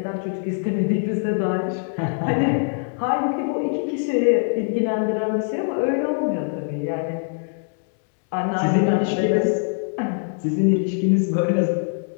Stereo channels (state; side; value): silent; right; 62 dB below the other